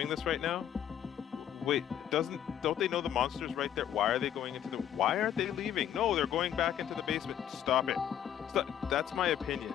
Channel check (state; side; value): quieter; right; 10.3 dB